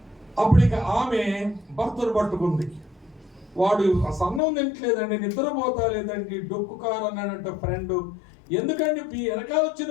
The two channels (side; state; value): right; drops out; at 4.4 s